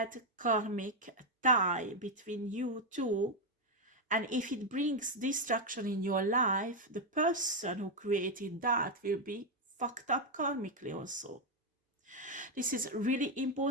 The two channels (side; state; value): both; normal; correlation 0.03